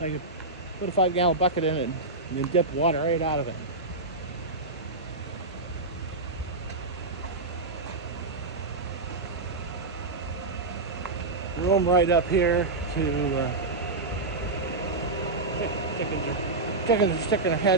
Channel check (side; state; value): left; quieter; 3.3 dB